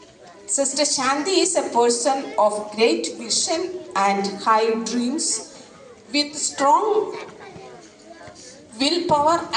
Sister Shanti is a person of great vision and high dreams with strong willpower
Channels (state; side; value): identical; both; correlation 1.00